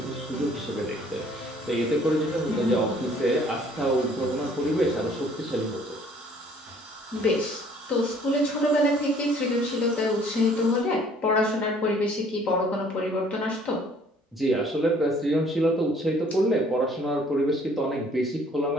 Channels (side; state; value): both; normal; correlation 0.58